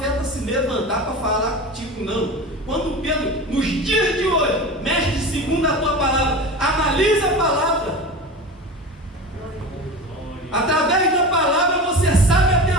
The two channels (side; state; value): both; normal; correlation 0.30